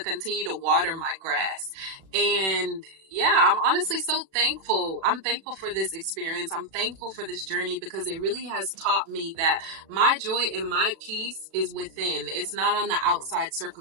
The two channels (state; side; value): late; left; 37 ms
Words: continue to water my grass. And yeah, I'm honestly so thankful. I'm thankful for this experience. I'm thankful for this journey, because it really has taught me that my joy and my peace is within. It's not on the outside